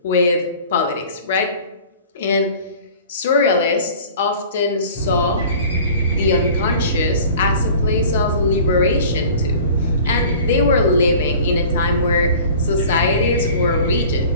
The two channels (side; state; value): both; inverted; correlation -0.44